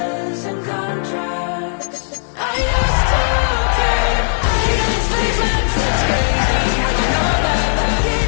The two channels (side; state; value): right; silent; digital silence